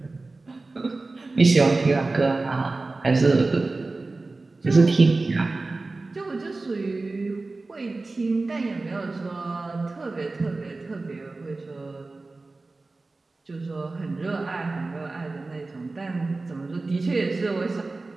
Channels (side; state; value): left; quieter; 3.4 dB